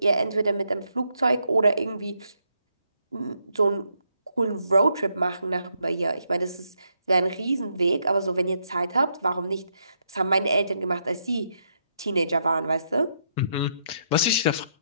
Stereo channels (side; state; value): both; inverted; correlation -0.77